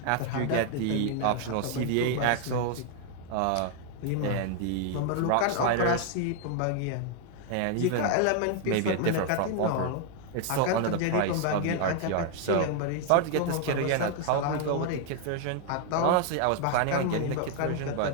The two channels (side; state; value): both; different; correlation 0.00